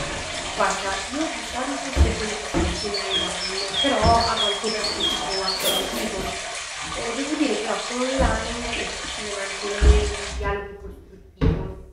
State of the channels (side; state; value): both; identical; correlation 1.00